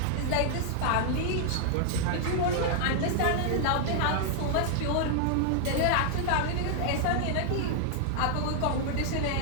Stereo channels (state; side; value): different; both; correlation 0.00